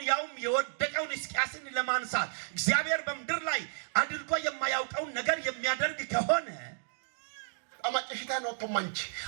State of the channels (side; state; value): left; silent; digital silence